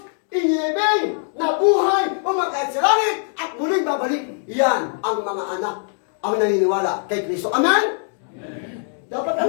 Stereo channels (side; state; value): right; silent; 59 dB below the other